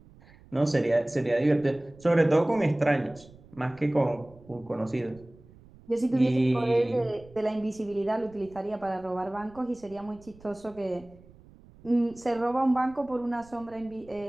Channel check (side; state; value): right; noise; rumble, 24 dB below the sound